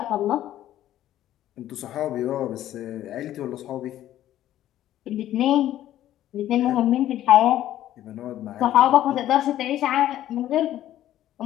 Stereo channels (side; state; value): right; quieter; 12.8 dB